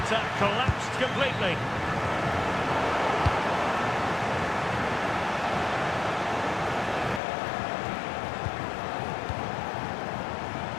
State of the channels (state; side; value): drops out; right; at 7.2 s